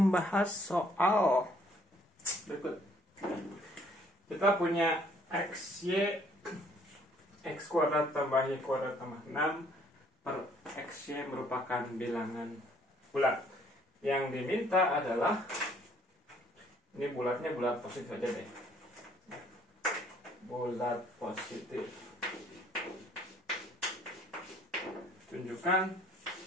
soal berikut. Kita punya XY X kuadrat tambah Y kuadrat tambah 6 per XY merupakan bilangan bulat. Yang diminta adalah, ini bulatnya bulat positif aja deh, bulat positif. Tunjukkan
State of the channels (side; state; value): both; normal; correlation 0.62